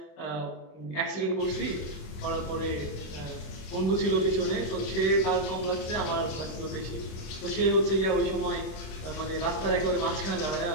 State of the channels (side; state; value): right; late; 26 ms